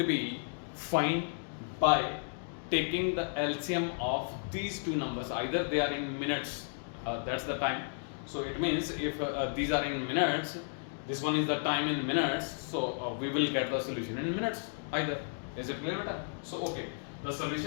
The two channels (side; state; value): right; silent; digital silence